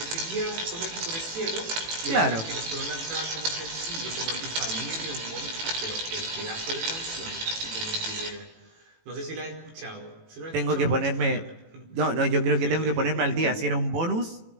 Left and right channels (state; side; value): late; left; 18 ms